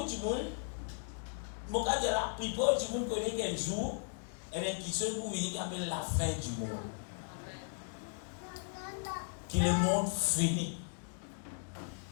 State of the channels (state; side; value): silent; right; 53 dB below the other